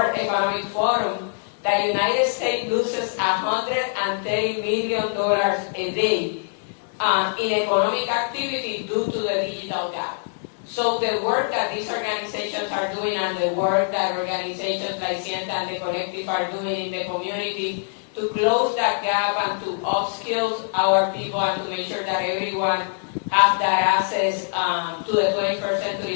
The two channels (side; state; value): right; silent; digital silence